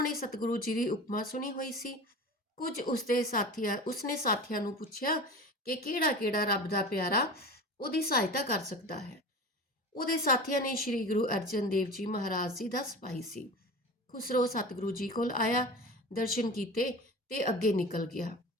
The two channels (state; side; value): normal; both; correlation 0.34